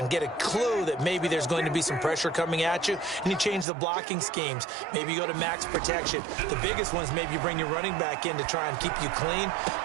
get a clue that maybe there's going to be some pressure coming at you, and you change the blocking schemes. Maybe you go to max protection. The biggest ones, maybe you bring your running back in to try and keep you clean.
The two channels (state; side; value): drops out; left; at 3.7 s